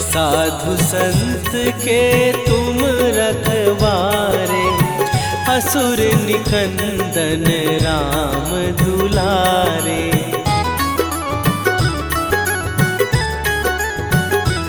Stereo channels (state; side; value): identical; both; correlation 1.00